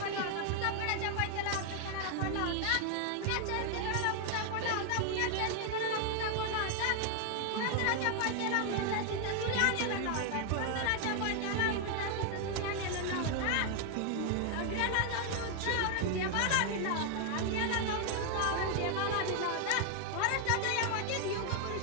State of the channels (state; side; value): different; both; correlation 0.00